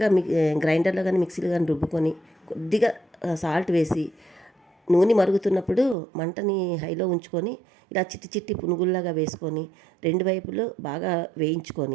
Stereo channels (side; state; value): left; drops out; at 6.0 s